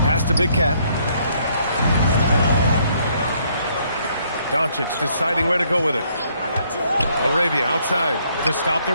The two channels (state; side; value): inverted; both; correlation -0.68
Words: Pass to Big Cat. Doncic deciding where to go with it. Laravia outside to stop the